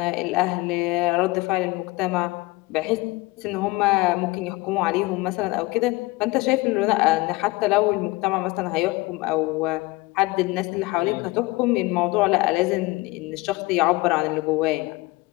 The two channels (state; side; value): quieter; right; 22.0 dB